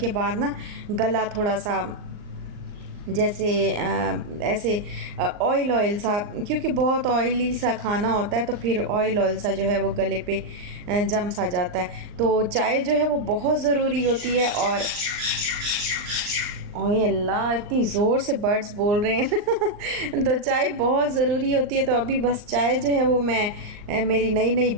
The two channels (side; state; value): left; late; 39 ms